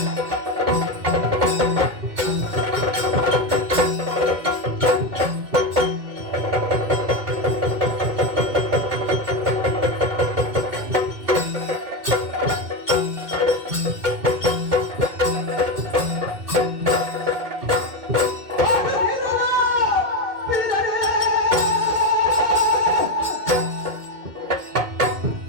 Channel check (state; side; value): late; left; 2.1 ms